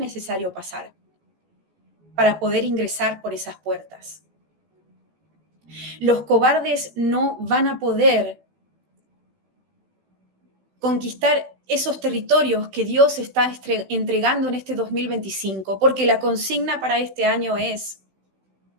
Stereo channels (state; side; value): late; left; 16 ms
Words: pasar para poder ingresar por esas puertas. Los cobardes no van a poder conquistar esos territorios que Dios está entregando en este 2025, porque la consigna para este año es